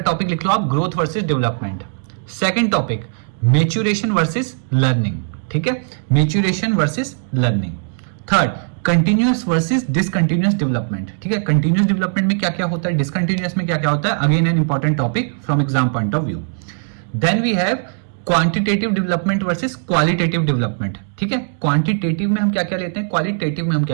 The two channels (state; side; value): silent; left; digital silence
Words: टॉपिक लिख लो आप, growth versus development. Second topic, maturation versus learning. ठीक है, maturation versus learning. Third, continuous versus discontinuous development. ठीक है, कंटिन्यूअस डेवलपमेंट में क्या क्या होता है, डिसकंटिन्यूअस में क्या क्या होता है, again an important topic from exam point of view. Then we have quantitative development versus qualitative development. ठीक है, क्वांटिटेटिव में हम क्या क्या लेते हैं, क्वालिटेटिव में हम